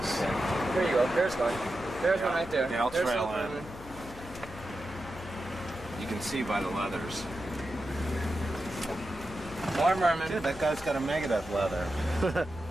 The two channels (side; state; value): left; noise; hum, 17 dB below the sound